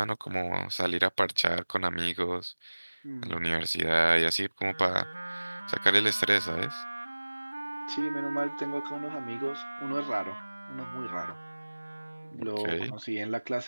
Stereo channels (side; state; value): both; inverted; correlation -1.00